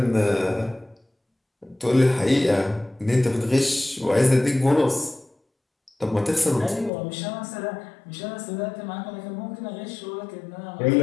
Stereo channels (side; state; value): right; drops out; at 6.9 s